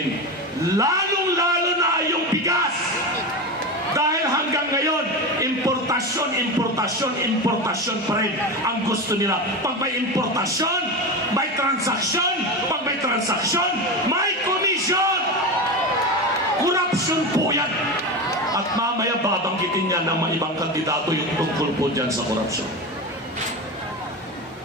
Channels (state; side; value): normal; both; correlation 0.22